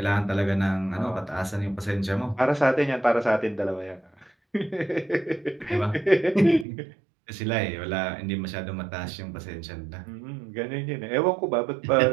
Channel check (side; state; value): left; drops out; at 6.7 s